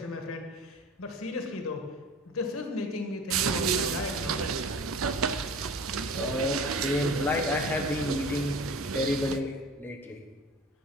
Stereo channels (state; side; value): normal; both; correlation 0.40